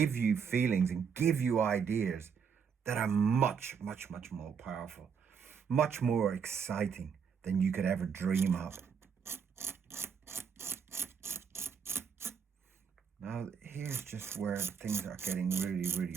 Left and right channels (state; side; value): quieter; left; 6.7 dB